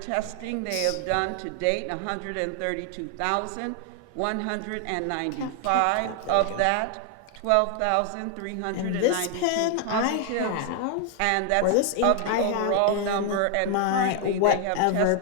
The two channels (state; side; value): different; both; correlation 0.00